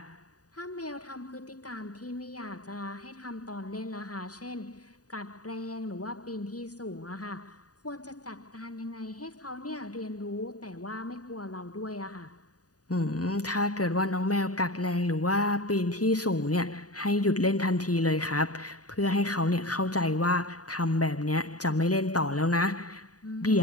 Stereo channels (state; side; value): late; right; 0.68 ms